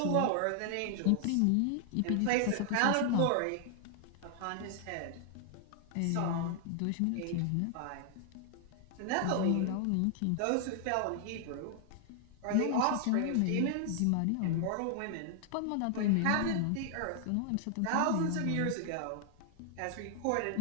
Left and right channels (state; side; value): different; both; correlation 0.00